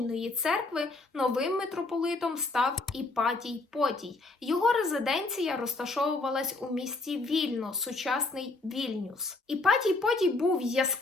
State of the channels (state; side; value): quieter; right; 3.3 dB